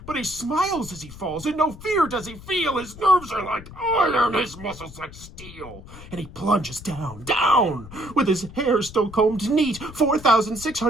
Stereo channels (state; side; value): noise; left; rumble, 16 dB below the sound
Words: But he smiles as he falls, and no fear does he feel. His nerves are like iron, his muscles like steel. And he plunges down, down, with his hair still combed neat,